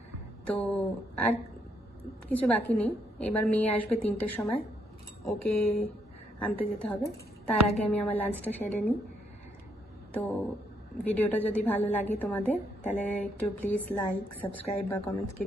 তো আর কিছু বাকি নেই। এবার মেয়ে আসবে 3টের সময়, ওকে আনতে যেতে হবে। তার আগে আমি আমার লাঞ্চটা সেরে নিই। তো ভিডিওটা যদি ভালো লাগে তোমাদের, তাহলে একটু প্লিজ লাইক, সাবস্ক্রাইব বা কমেন্টস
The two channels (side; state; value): both; normal; correlation 0.74